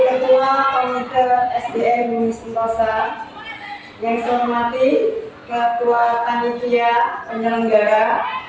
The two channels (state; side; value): identical; both; correlation 1.00